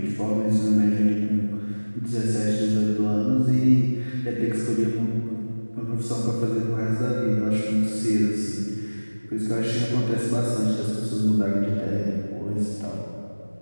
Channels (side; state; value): both; inverted; correlation -1.00